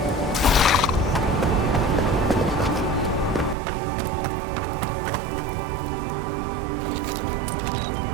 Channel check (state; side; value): drops out; left; at 3.6 s